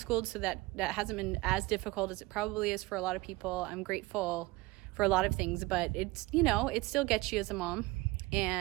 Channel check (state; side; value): quieter; left; 21.5 dB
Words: so that hasn't been as difficult as it probably is for a lot of people. I'm grateful for a lot of things, but it's, it still gets you as a mom.